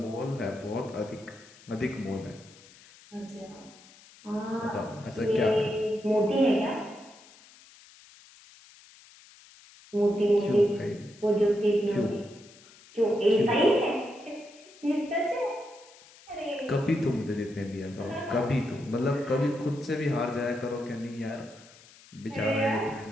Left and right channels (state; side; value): noise; left; hiss, 23 dB below the sound